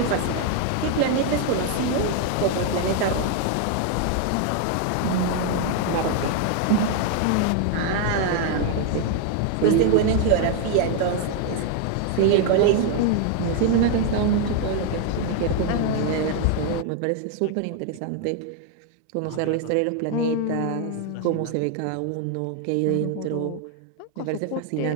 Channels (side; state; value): both; different; correlation 0.00